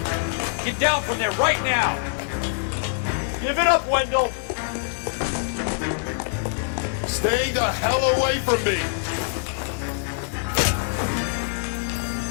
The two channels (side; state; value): right; silent; digital silence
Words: Get down from there right now. Give it up, Wendell! Stay the hell away from me!